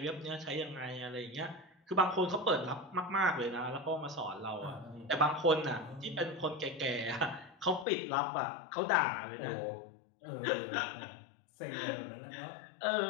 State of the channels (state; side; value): drops out; right; at 7.9 s